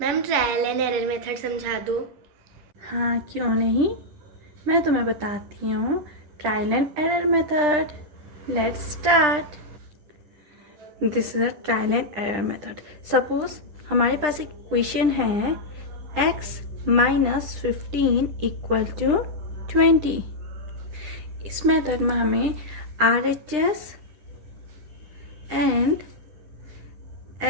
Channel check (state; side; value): late; left; 10 ms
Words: Ma'am trial and error method समझा दो। हाँ, क्यों नहीं। मैं तुम्हें बताती हूँ trial and error method. Let's start. This is a trial and error method. Suppose हमारे पास एक क्वेश्चन है x माइनस 15 इक्वल टू 20। इस मेथड में हमें RHS एंड